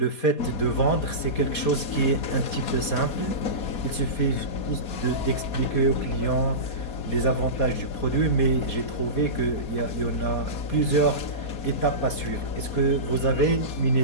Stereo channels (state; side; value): late; right; 4.2 ms